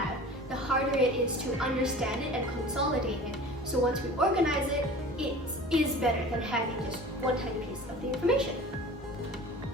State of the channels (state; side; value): normal; both; correlation 0.40